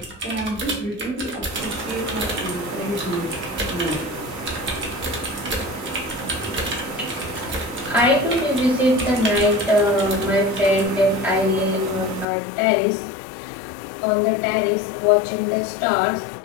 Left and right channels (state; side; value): drops out; right; at 12.2 s